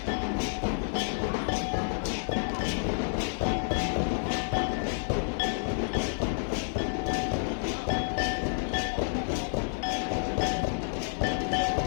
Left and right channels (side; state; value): right; silent; 58 dB below the other